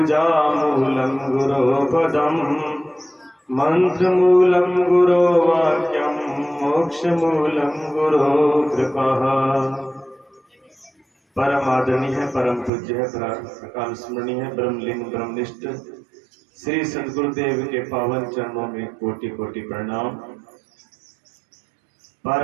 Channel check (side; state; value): left; drops out; at 12.7 s